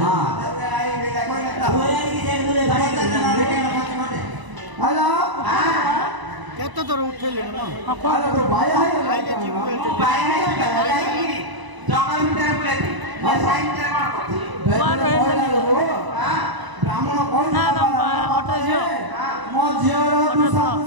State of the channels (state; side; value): late; left; 1.0 ms